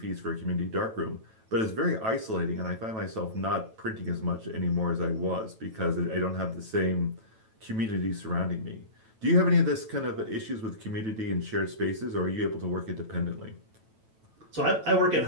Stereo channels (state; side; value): late; left; 9.1 ms